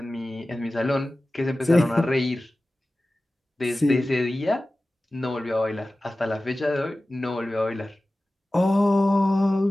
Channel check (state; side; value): normal; both; correlation 0.96